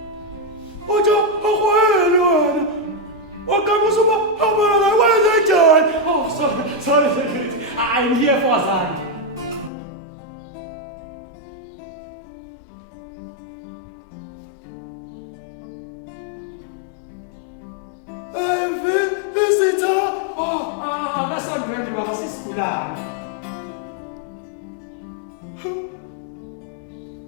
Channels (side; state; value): right; drops out; at 9.7 s